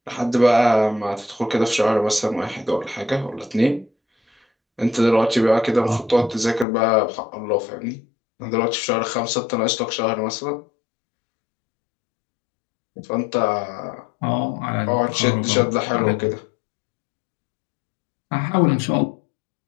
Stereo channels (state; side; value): drops out; right; at 6.7 s